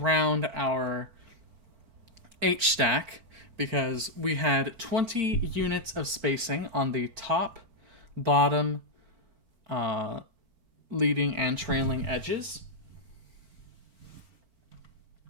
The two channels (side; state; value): left; late; 4.4 ms